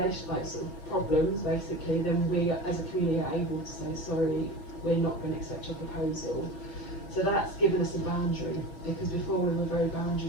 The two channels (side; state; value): right; late; 6.0 ms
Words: sort of problems basically, then we as a community are able to say, sorry, we're not going to accept your proposal. So that's given us a boundary, because before we were very